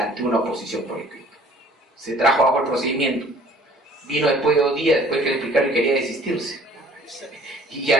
una oposición por escrito. Se trajo bajo el procedimiento, vino después de 2 días, después que le explicaron y quería desistirse, y ya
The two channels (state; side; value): normal; both; correlation 0.53